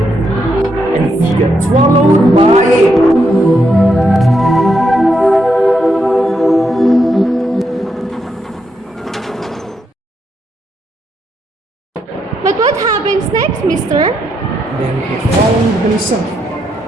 and he got swallowed by it. But what happens next, mister? Then he found himself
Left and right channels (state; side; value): normal; both; correlation 0.80